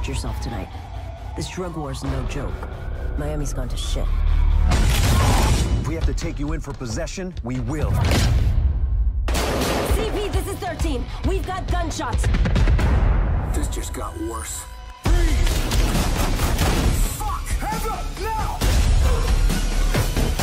yourself tonight. This drug war is no joke. Miami's gone to shit. If we have to take you in for possession, we will. CP, this is 13. We've got gunshots. This just got worse. Freeze! Fuck! Hands up, now!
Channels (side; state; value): both; identical; correlation 1.00